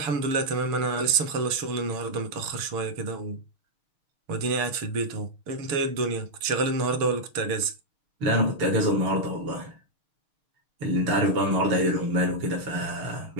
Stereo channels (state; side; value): late; left; 6.5 ms